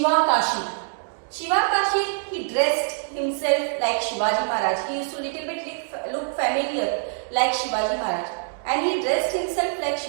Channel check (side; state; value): left; silent; 62 dB below the other